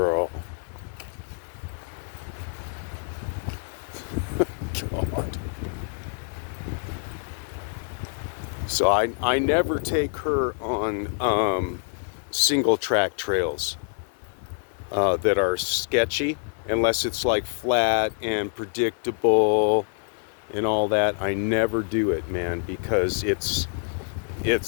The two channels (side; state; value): right; silent; 61 dB below the other